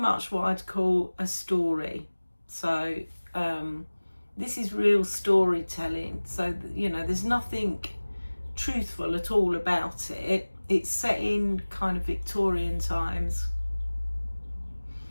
what I'd call a story. So this is real storytelling. So you know, there's nothing truthful at all about it. It's set in kind of Victorian times,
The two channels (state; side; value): inverted; both; correlation -1.00